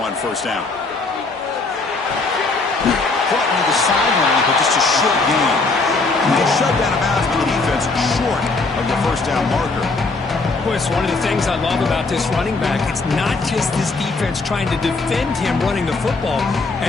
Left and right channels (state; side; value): quieter; right; 3.7 dB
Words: on first down. Caught near the sideline, but just a short gain. They shut down a bounce by the defense short of the first down marker. Chris, one of the things I love about this running back, it's not just this defense trying to defend him running the football.